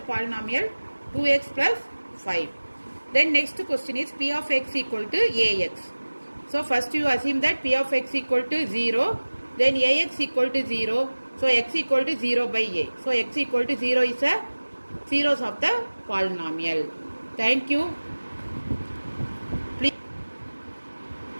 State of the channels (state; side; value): inverted; both; correlation -1.00